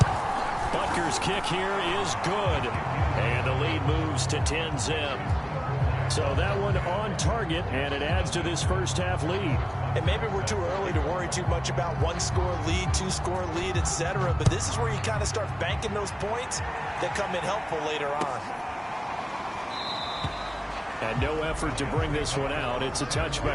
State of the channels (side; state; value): both; identical; correlation 1.00